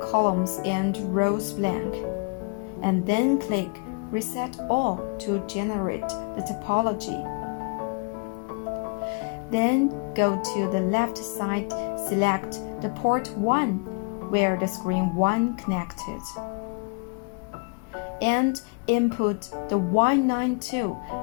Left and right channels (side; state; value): right; quieter; 32.7 dB